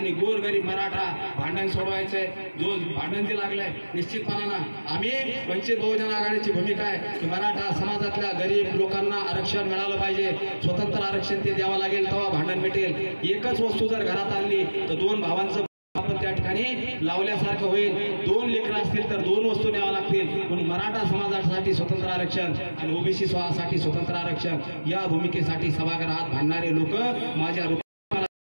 गोरगरीब मराठा भांडण सोडवायचंय. जो भांडण जे लागलंय निश्चितपणानं आम्ही वंचित बहुजन आघाडीची भूमिका आहे की मराठा समाजातल्या गरीब लोकांना आरक्षण मिळालं पाहिजे. स्वतंत्र आरक्षण ते द्यावं लागेल, तेव्हा भांडण मिटेल. एकच वस्तू जर घरात आणली तर 2 भावांचं आपण त्या ठिकाणी लावल्यासारखं होईल. 2 लेकरं असतील तर 2 वस्तू न्याव्या लागतील. म्हणून मराठा समाजासाठी स्वतंत्र आरक्षण आणि ओबीसी साठी स्वतंत्र आरक्षण या भूमिकेसाठी सभागृहात भांडणारे लोक माझ्या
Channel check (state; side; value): inverted; both; correlation -1.00